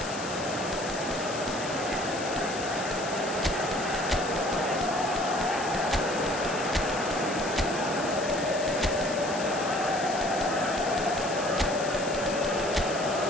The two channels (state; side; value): noise; left; hiss, 10 dB below the sound